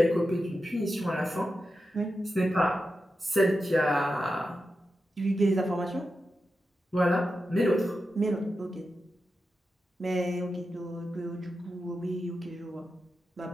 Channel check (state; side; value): normal; both; correlation 0.90